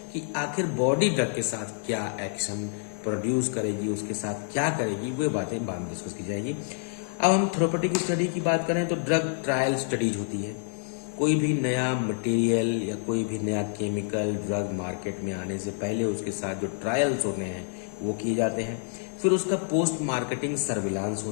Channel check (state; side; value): silent; right; digital silence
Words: कि आखिर बॉडी ड्रग के साथ क्या एक्शन प्रोड्यूस करेगी, उसके साथ क्या करेगी, वो बातें बाद में डिस्कस की जाएगी। अब हम थेरेप्यूटिक स्टडी की बात करें तो ड्रग ट्रायल स्टडीज होती है। कोई भी नया मटेरियल या कोई भी नया केमिकल ड्रग मार्केट में आने से पहले उसके साथ जो ट्रायल्स होते हैं वो किए जाते हैं। फिर उसका पोस्ट मार्केटिंग सर्विलांस